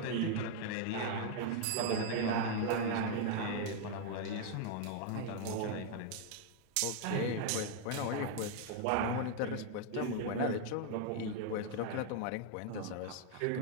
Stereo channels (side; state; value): both; different; correlation 0.00